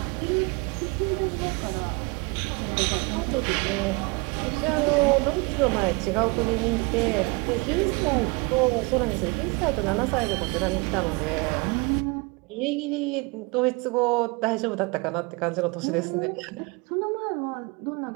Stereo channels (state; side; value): quieter; left; 27.5 dB